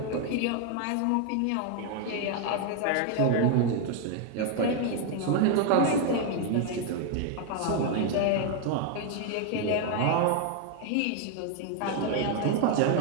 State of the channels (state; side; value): different; both; correlation 0.00